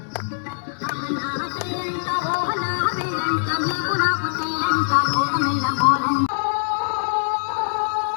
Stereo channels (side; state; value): right; silent; digital silence